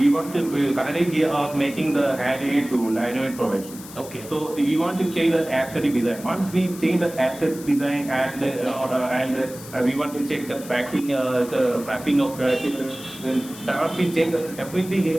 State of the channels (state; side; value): noise; left; hiss, 16 dB below the sound